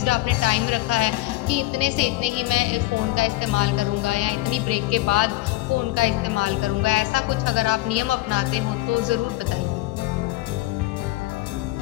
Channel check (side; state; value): right; quieter; 18.0 dB